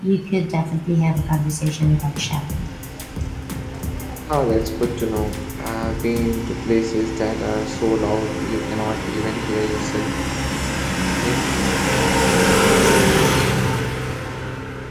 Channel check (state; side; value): identical; both; correlation 1.00